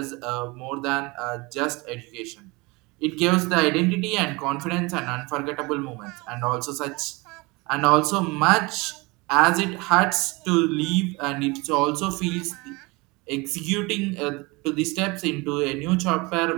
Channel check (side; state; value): left; quieter; 25.3 dB